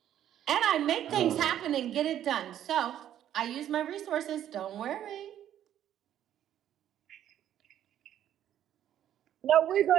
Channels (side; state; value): left; quieter; 11.0 dB